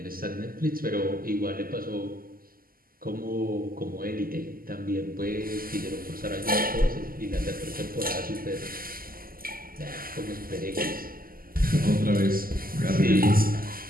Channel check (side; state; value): left; late; 0.42 ms